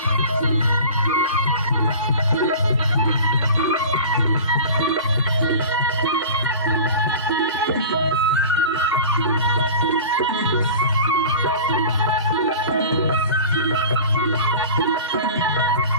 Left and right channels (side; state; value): both; inverted; correlation -0.37